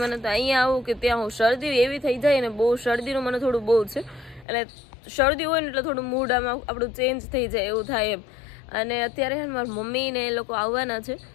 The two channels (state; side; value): drops out; right; at 4.5 s